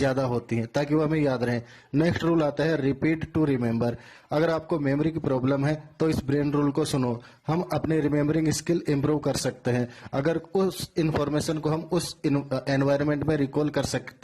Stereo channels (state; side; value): identical; both; correlation 1.00